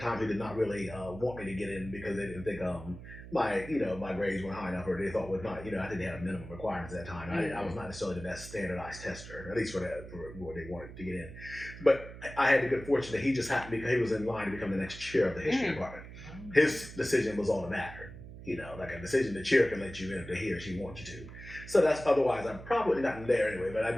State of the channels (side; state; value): right; noise; hum, 14 dB below the sound